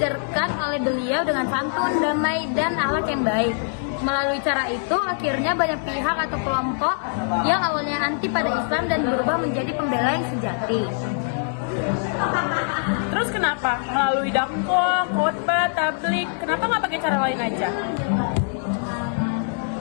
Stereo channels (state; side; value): silent; right; digital silence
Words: oleh beliau dengan santun, damai, dan akhlak yang baik. Melalui cara itu, akhirnya banyak pihak atau kelompok yang awalnya anti pada Islam dan berubah menjadi pembela yang sejati. Terus kenapa? Melalui dakwah, khotbah, tabligh, kenapa nggak pakai cara lain aja?